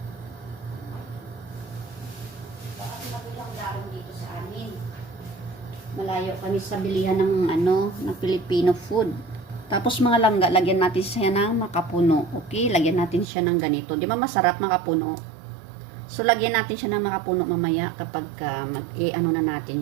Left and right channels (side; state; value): left; drops out; at 13.2 s